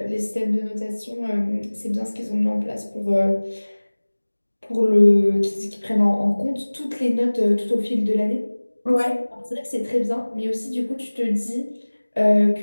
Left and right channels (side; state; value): both; inverted; correlation -1.00